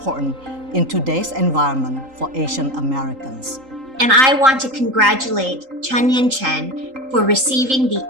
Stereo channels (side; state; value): left; late; 3.8 ms